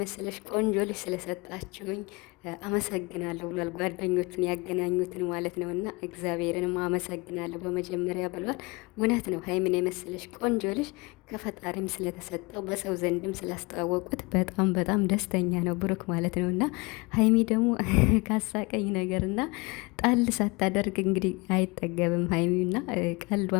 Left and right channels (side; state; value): right; quieter; 26.4 dB